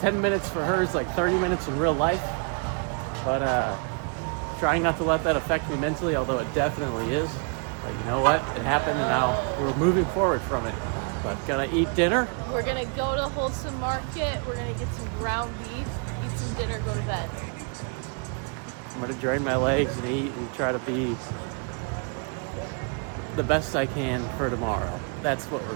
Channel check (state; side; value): quieter; left; 38.6 dB